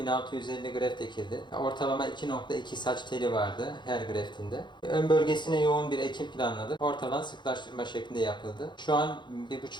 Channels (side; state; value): right; late; 0.22 ms